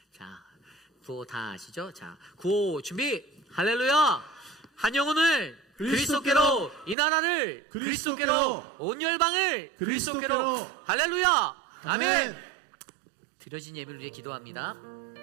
자 구호 다 아시죠? 자 구호 준비. 할렐루야. 한 영혼을 그리스도께로, 이 나라를 그리스도께로, 온 열방을 그리스도께로. 할렐루야. 아멘. 드려진 예배를 위해 기도합니다.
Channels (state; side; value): drops out; left; at 7.0 s